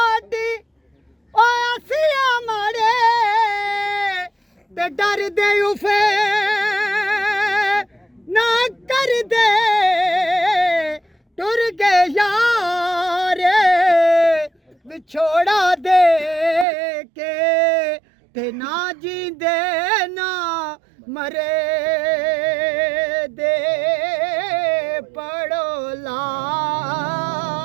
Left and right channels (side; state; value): left; drops out; at 16.7 s